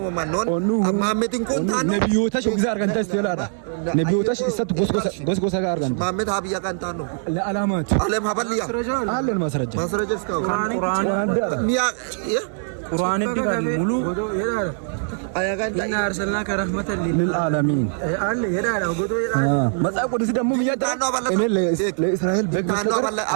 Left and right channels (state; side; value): silent; left; 64 dB below the other